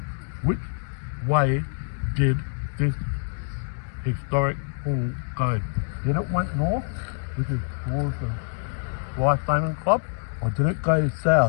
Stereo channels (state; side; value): silent; right; digital silence